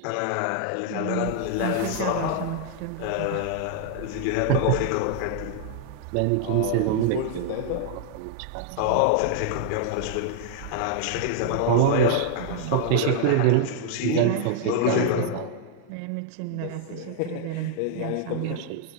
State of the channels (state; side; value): different; both; correlation 0.00